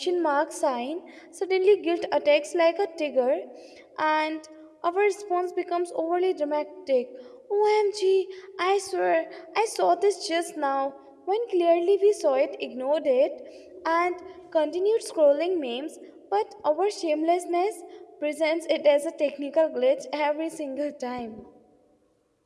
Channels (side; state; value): both; identical; correlation 1.00